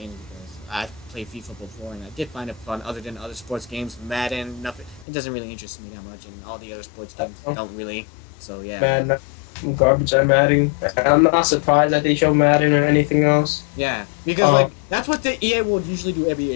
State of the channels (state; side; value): drops out; right; at 5.1 s